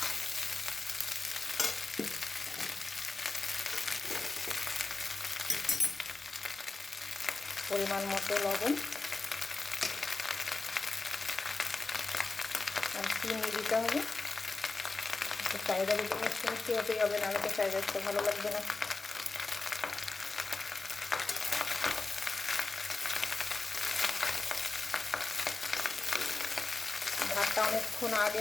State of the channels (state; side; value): quieter; right; 3.7 dB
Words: পরিমাণ মতো লবণ আর চিনি দিতে হবে। ফ্রাইড রাইস মিষ্টি মিষ্টি হতেই হবে, নাহলে তো ফ্রাইড রাইসটা ভালো লাগবে না। ভাতটা অনেকক্ষণ আগে